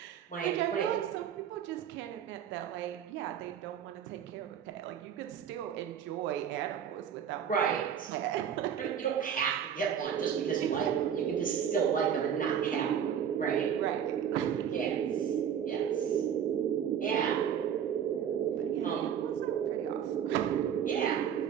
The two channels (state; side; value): quieter; left; 8.6 dB